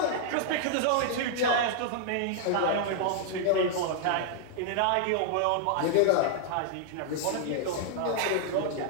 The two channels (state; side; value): different; both; correlation -0.01